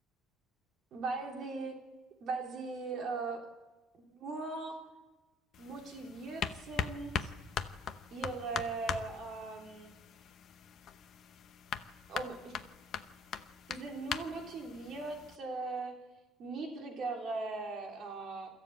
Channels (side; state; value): both; normal; correlation 0.56